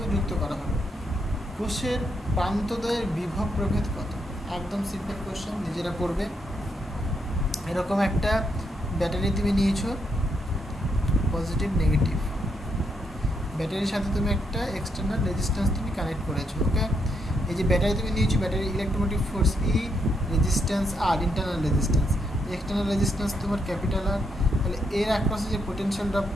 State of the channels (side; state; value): both; normal; correlation 0.78